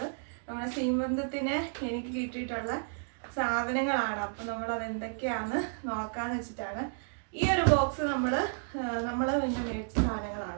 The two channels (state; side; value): silent; left; digital silence